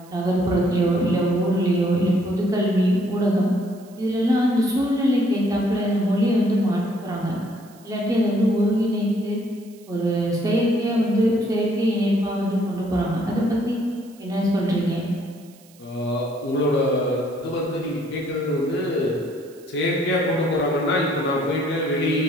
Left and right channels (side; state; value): right; noise; hiss, 27 dB below the sound